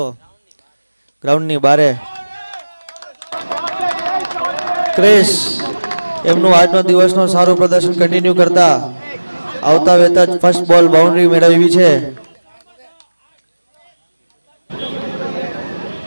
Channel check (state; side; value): inverted; both; correlation -1.00